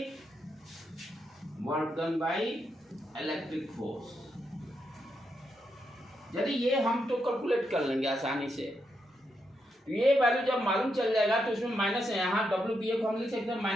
by electric force. यदि ये हम तो कैलकुलेट कर लेंगे आसानी से, तो ये वैल्यू जब मालूम चल जाएगा तो उसमें माइनस है, यहाँ WBA को हम लिख सकते हैं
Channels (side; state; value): both; normal; correlation 0.82